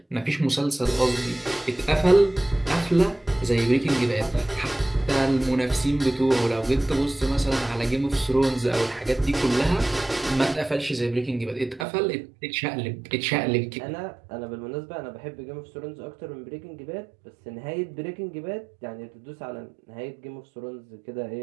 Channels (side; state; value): left; drops out; at 11.9 s